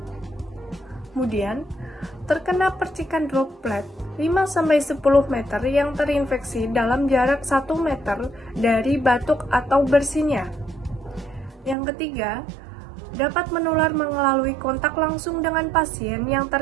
Kemudian, terkena percikan droplet 5-10 meter yang terinfeksi dalam jarak 1 meter dari batuk atau bersinnya. Yang ketiga, dapat menular melalui kontak langsung dengan pasien yang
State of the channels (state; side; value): drops out; left; at 11.8 s